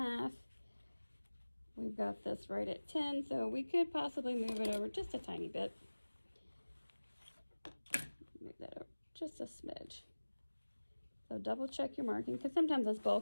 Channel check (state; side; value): inverted; both; correlation -1.00